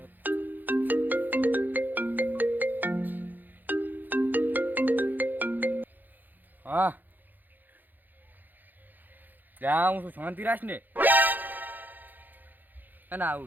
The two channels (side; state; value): left; late; 0.087 ms